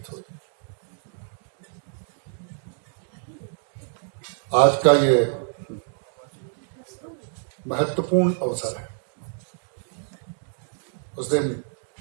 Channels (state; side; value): silent; left; digital silence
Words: थोड़ी। आज का ये महत्वपूर्ण अवसर है। उस दिन